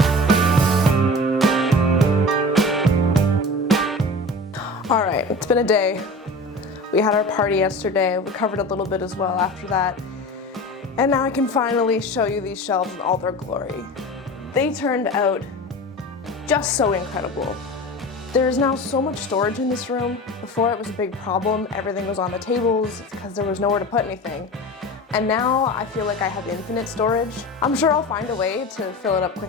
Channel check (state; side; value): normal; both; correlation 0.34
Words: All right, it's been a day. We had our party yesterday. We covered a little bit as well after that. And now I can finally show you these shelves in all their glory. They turned out just so incredible. There's now so much storage in this room. Before it was a big problem. Everything was on the tables because there was nowhere to put anything. And now I feel like I have infinite storage. I'm sure I'll find a way to fill it up